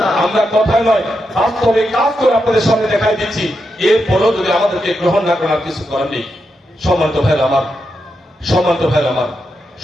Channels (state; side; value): normal; both; correlation 0.85